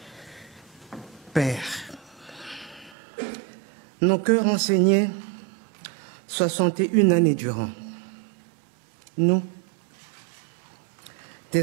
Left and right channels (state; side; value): drops out; left; at 3.0 s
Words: Père, nos cœurs enseignés 61 années durant, nous,